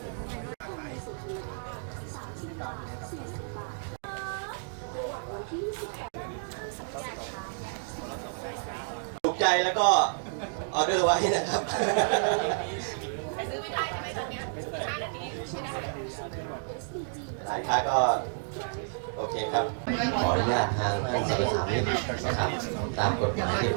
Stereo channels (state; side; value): silent; left; digital silence